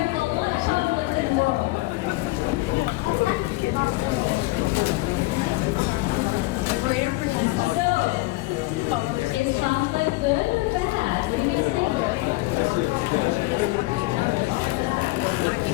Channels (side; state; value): right; quieter; 21.1 dB